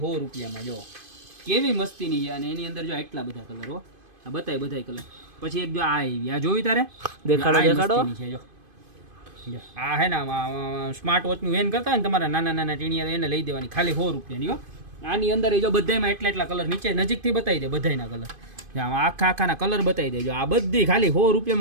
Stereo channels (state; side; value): late; left; 2.5 ms